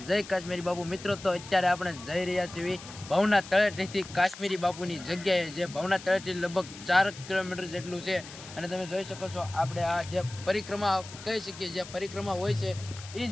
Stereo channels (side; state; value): left; noise; hiss, 15 dB below the sound